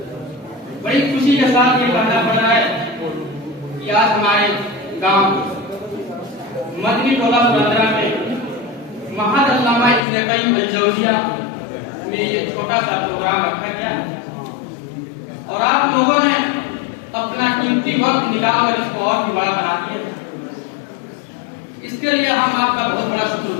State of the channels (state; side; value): drops out; right; at 10.1 s